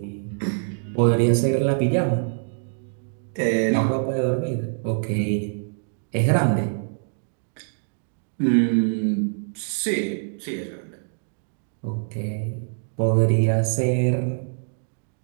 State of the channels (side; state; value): left; silent; digital silence